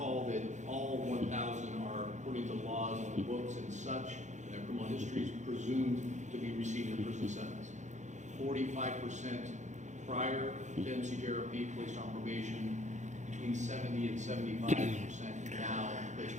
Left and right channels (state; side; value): late; left; 0.35 ms